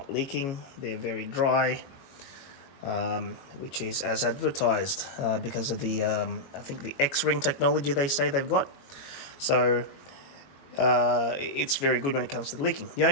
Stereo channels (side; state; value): right; late; 22 ms